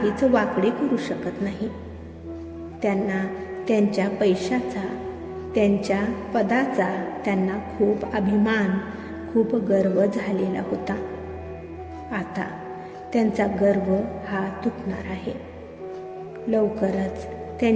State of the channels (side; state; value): both; identical; correlation 1.00